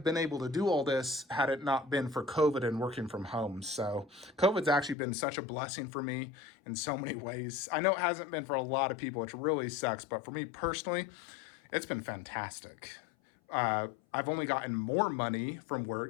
been able to do all this had it not been for COVID and working from home. So COVID's actually been such a blessing for me in so many ways. I know it hasn't been for a lot of people, which really sucks, but for me personally, it's been fantastic. I've only gotten more money from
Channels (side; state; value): right; drops out; at 5.0 s